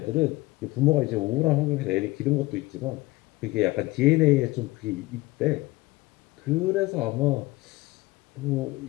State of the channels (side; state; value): right; quieter; 20.5 dB